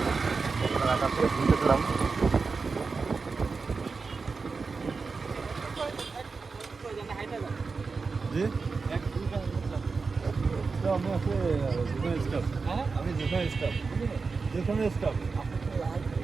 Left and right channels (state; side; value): quieter; left; 4.5 dB